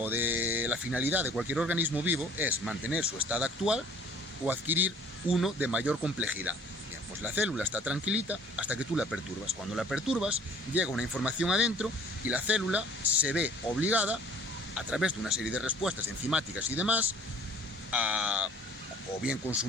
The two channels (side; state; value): both; normal; correlation 0.53